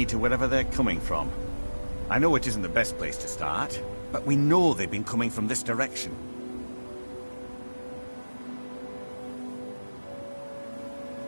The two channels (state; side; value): inverted; both; correlation -1.00